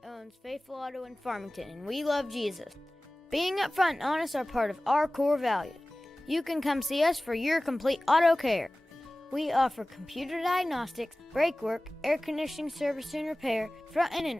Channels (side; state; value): both; normal; correlation 0.98